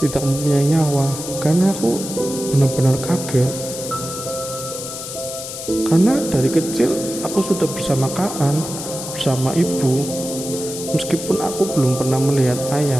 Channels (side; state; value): left; noise; hiss, 8 dB below the sound